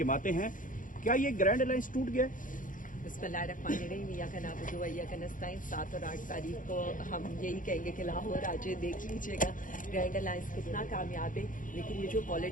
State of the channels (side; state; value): right; late; 0.39 ms